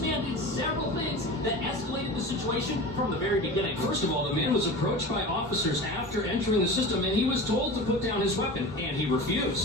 did several things that escalated the situation from the very beginning. First of all, the man was approached by officers after entering the system, and he was told to put down his weapon, and he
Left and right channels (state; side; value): normal; both; correlation 0.32